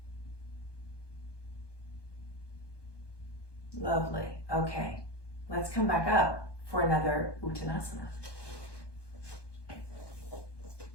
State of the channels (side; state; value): right; late; 1.2 ms